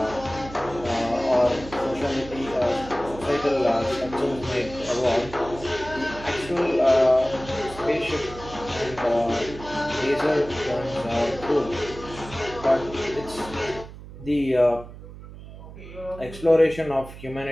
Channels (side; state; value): right; noise; hum, 15 dB below the sound